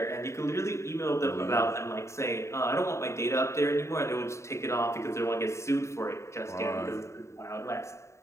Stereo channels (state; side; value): late; right; 0.14 ms